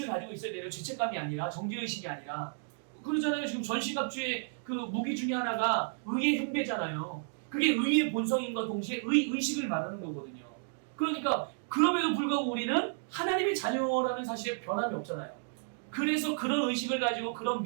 가지고 있어야 돼요. 죄책감이 아니라 정죄의식이 아니라. 그러잖아요. 지금 전시갑주의 그 무기 중에 하나가 의의 흉배잖아요. 그게 의의 본성인과 동시에 의식을 말하는 거거든요. 그러니까 그럼에도 불구하고 우리는 하나님의 자녀라는 사실에 변함이 없잖아요. 그래서 그런 의식을 가지고 그런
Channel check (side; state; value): left; silent; digital silence